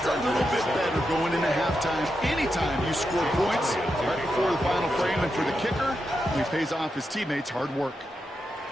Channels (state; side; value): normal; both; correlation 0.86